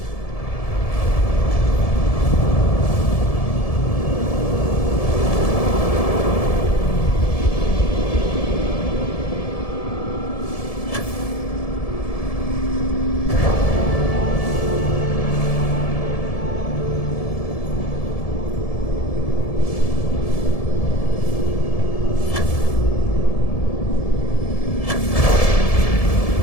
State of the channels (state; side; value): late; right; 1.7 ms